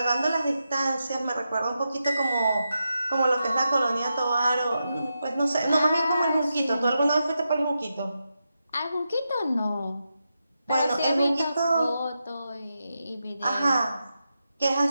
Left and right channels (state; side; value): inverted; both; correlation -0.88